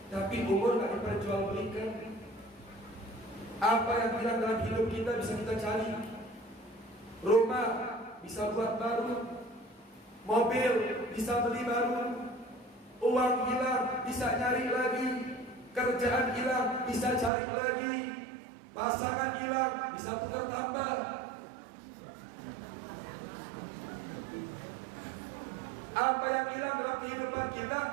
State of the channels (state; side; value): drops out; left; at 17.3 s